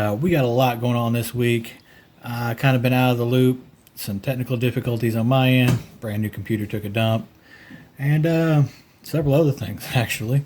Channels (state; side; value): identical; both; correlation 1.00